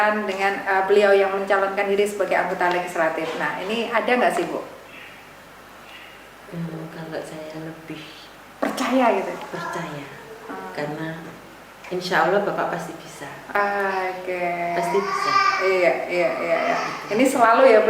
dengan beliau yang mencalonkan diri sebagai anggota legislatif. Nah, ini ada nggak sih, Bu? Kalau saya lebih percaya gitu. Percaya. Karena insya Allah Bapak pasti bisa. Pasti bisa. Iya. Ini selalu ya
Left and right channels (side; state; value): both; identical; correlation 1.00